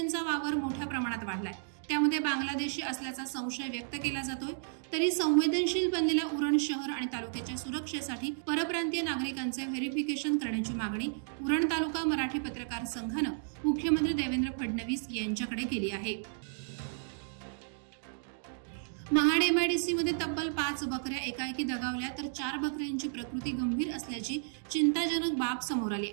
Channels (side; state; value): left; silent; digital silence